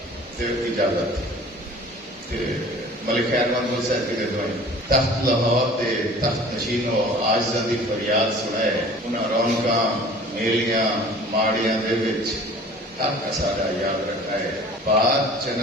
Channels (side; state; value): both; normal; correlation 0.46